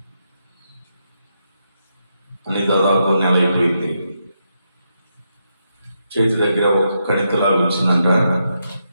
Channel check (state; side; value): inverted; both; correlation -0.82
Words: అని దాదాపు నెల అయిపోయింది. చేతి దగ్గర ఒక కణితలాగా వచ్చిందంట.